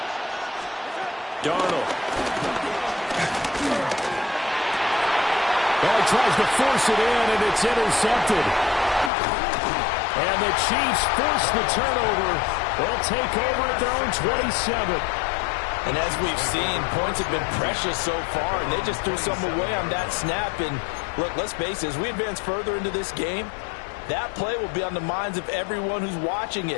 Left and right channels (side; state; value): right; drops out; at 9.1 s